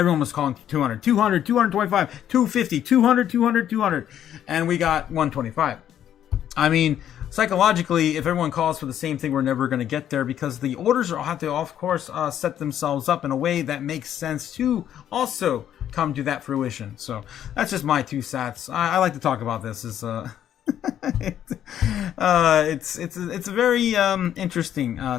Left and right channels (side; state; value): right; quieter; 10.5 dB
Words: was calling for 200, 200, 225, 250, 200, 200, 200. And we got 125. I mean, psychologically, if everyone calls for the same thing, we're never going to get there because the orders have to, of course, set themselves up in a way that makes sense to also come to that fruition. So that's just my 2 cents. I like to talk about this. It's a very interesting